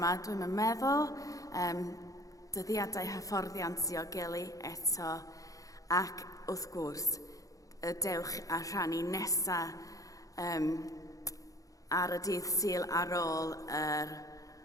dwi'n meddwl. Dyddiadau hyfforddiant diogelu eto. Ac wrth gwrs, y dewch a rhannu nesaf ar y dydd Sul ar ôl yr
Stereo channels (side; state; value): right; late; 0.17 ms